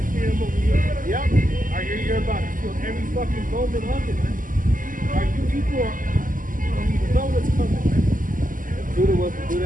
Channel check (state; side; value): late; left; 0.39 ms